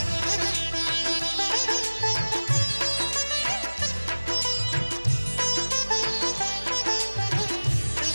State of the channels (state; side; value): inverted; both; correlation -1.00